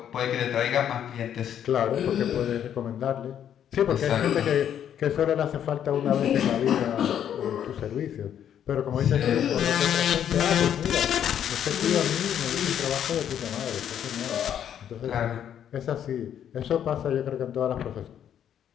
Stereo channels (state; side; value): quieter; right; 9.6 dB